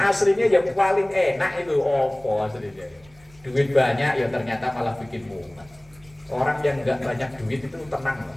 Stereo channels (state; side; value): noise; right; rumble, 27 dB below the sound